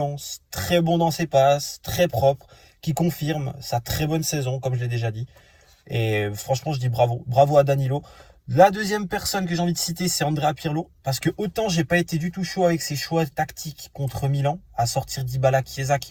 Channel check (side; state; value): both; identical; correlation 1.00